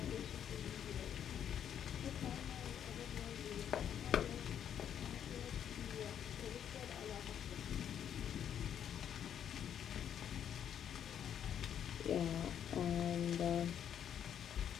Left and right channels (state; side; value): quieter; right; 9.2 dB